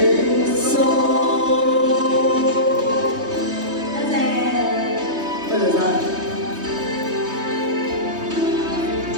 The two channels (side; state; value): left; late; 3.2 ms